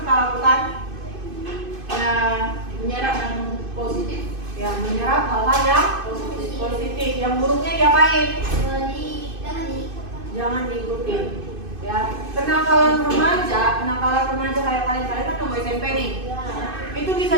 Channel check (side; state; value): left; late; 2.5 ms